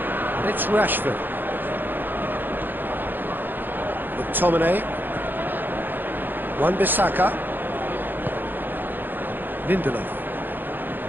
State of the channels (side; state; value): left; late; 0.091 ms